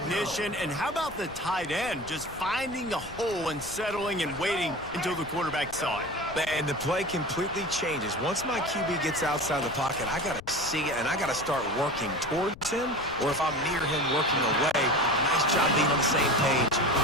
And how about the tight end just finding a hole and settling and waiting until the quarterback saw it? And the play completely changes. Once my QB gets outside the pocket, I got to see it, and I got to start working towards him, or if I'm near him working away, nice job being on the same page,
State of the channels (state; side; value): noise; left; rumble, 17 dB below the sound